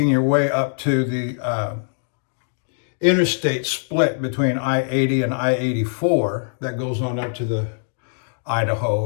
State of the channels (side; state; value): right; silent; digital silence